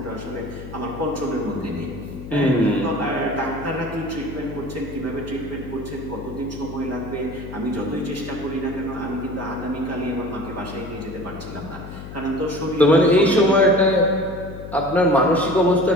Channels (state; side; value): noise; left; hum, 12 dB below the sound